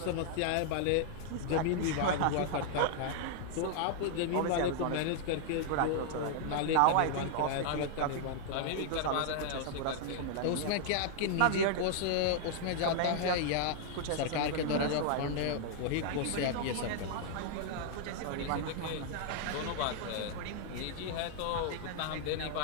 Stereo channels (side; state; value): both; different; correlation 0.00